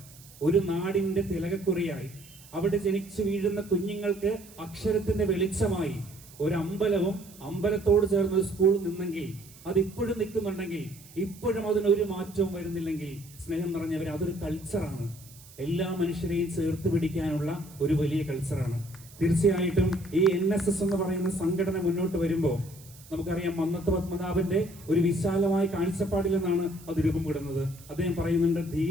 ഒരു നാടിന്റെ തിലകക്കുറിയായി അവിടെ ജനിച്ചു വീഴുന്ന കുഞ്ഞുങ്ങൾക്ക് അക്ഷരത്തിന്റെ വെളിച്ചമായി ഒരു അമ്പലവും അമ്പലത്തോട് ചേർന്ന ഒരു സ്കൂൾ നിന്നെങ്കിൽ, അതിപ്പോഴും നിൽക്കുന്നുണ്ടെങ്കിൽ, ഇപ്പോഴും അതിനൊരു മാറ്റവും വരുന്നില്ലെങ്കിൽ, സ്നേഹം നിറഞ്ഞവരെ, അതൊരു കൾച്ചറാണ്. എല്ലാ മനുഷ്യരെയും ചേർത്ത് പിടിക്കാനുള്ള ഒരു വലിയ കൾച്ചറാണ്. തീർച്ചയായിട്ടും ഈ NSS എന്ന് പറയുന്ന സംഘടന മുന്നോട്ട് വരുമ്പോൾ നമുക്കറിയാം, മന്നത്ത് പത്മനാഭന്റെ ഒരു വിശാലമായ കാഴ്ചപ്പാടിൽ നിന്നാണ് അത് രൂപപ്പെടുന്നത്. അദ്ദേഹം പറയുന്നുണ്ട്,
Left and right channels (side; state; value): right; noise; hiss, 21 dB below the sound